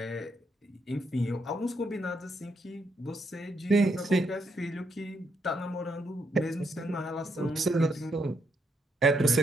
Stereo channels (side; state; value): both; normal; correlation 0.77